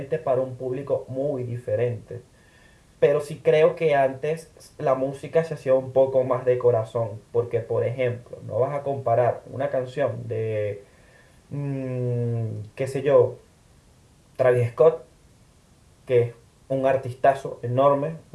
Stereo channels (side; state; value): both; identical; correlation 1.00